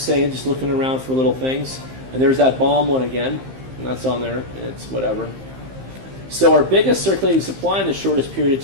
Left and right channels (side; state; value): left; late; 15 ms